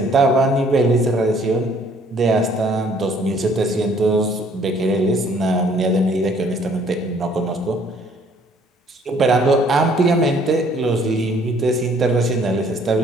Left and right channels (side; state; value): both; normal; correlation 0.60